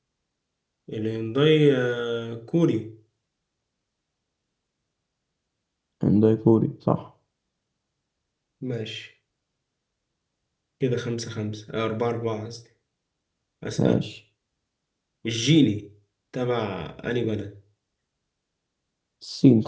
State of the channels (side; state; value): both; identical; correlation 1.00